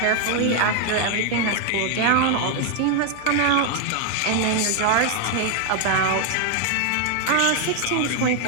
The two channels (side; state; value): both; different; correlation 0.00